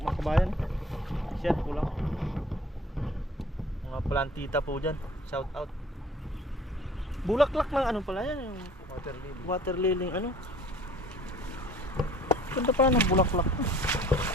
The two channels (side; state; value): both; normal; correlation 0.50